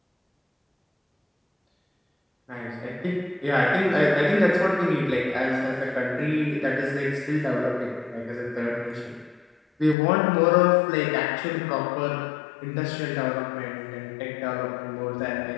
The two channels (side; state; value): right; drops out; at 10.0 s